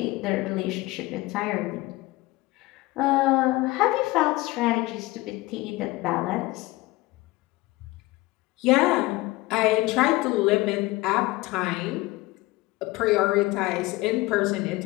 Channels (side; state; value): right; quieter; 20.5 dB